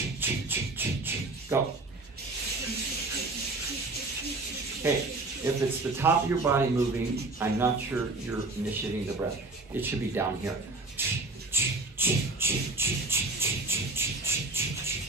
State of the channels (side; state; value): left; quieter; 3.1 dB